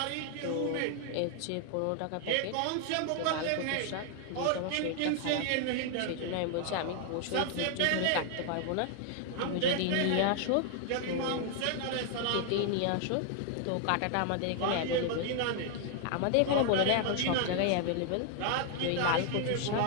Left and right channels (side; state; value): both; different; correlation 0.00